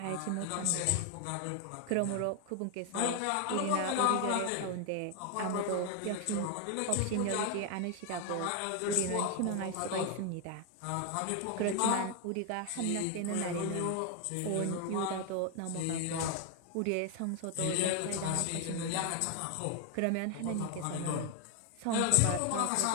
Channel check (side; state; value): both; different; correlation 0.01